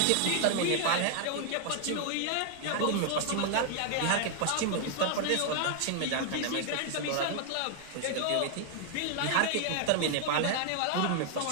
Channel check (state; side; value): different; both; correlation 0.00